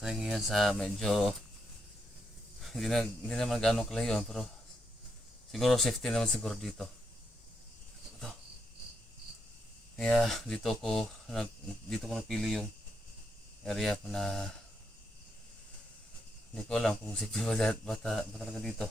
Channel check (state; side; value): normal; both; correlation 0.80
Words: ngayon sa medyo hindi naman gaano kalayo, pero siguro safety naman siguro dito. Ito. Kaya dito ko napili yung area na hindi ko alam kung safety ba talaga dito.